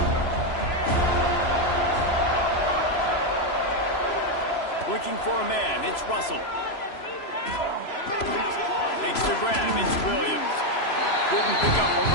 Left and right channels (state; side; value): late; right; 3.0 ms